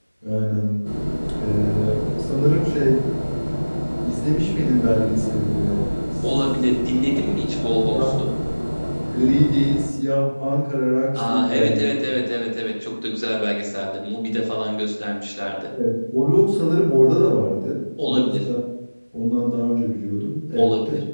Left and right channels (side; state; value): both; inverted; correlation -1.00